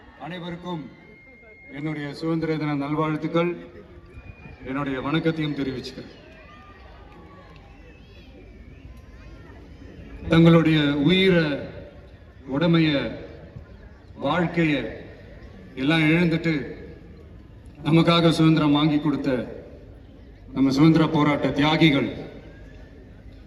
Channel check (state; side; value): identical; both; correlation 1.00